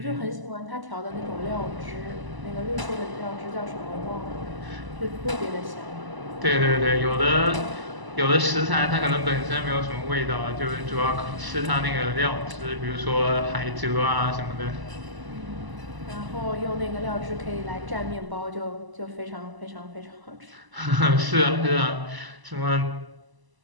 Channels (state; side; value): late; left; 1.0 ms